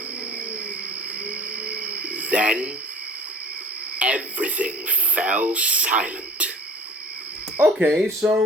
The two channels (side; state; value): both; normal; correlation 0.45